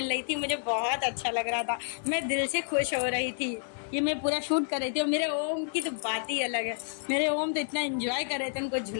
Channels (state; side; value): silent; right; digital silence